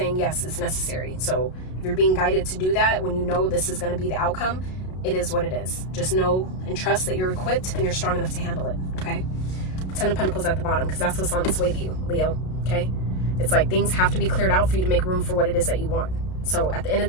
yes, it's necessary. So if you're being guided to do that, when this is going to be the outcome, it is what it is. Just know and trust that you're equipped and you're strong enough to handle it, okay? 10 of Pentacles at the bottom, because that's what's on its way to you, Leo, okay? It's like things have to be cleared out for you to make room for what it is that you want. So at the end of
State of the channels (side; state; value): right; late; 32 ms